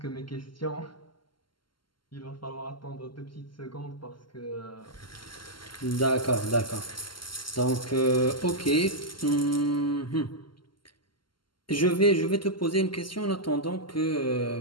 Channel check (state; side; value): late; right; 0.72 ms